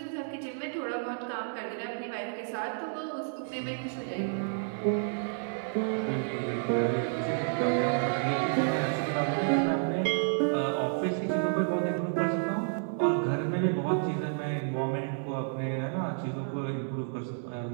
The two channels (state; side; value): silent; left; 57 dB below the other